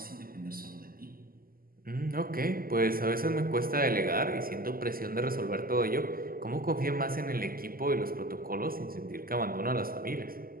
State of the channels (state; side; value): late; left; 0.42 ms